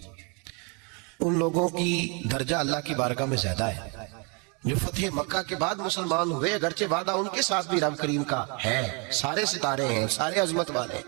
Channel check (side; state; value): left; quieter; 33.3 dB